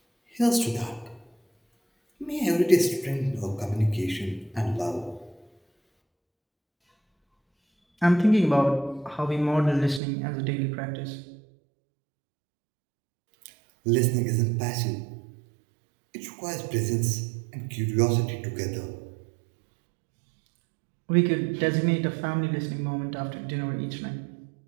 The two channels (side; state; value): left; drops out; at 10.0 s